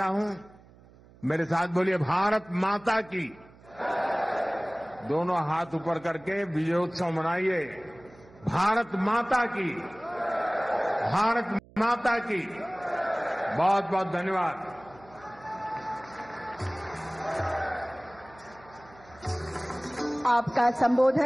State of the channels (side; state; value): right; noise; hum, 24 dB below the sound